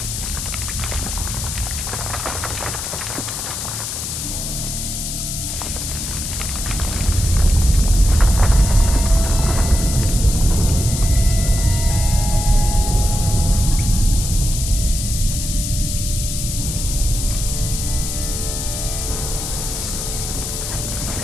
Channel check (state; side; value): noise; left; hiss, 5 dB below the sound